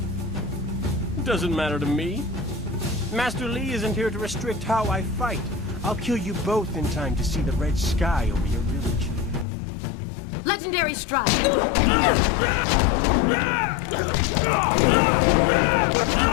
Doesn't matter to me. Master Li isn't here to restrict how I fight. I'll kill you both in time to see the red sky over your village. Legendary strike!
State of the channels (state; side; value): drops out; right; at 9.5 s